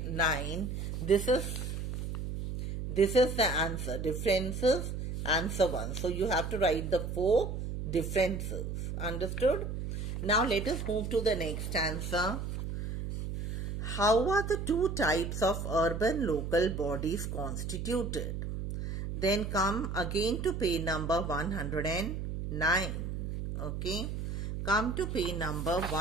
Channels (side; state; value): right; noise; hum, 4 dB below the sound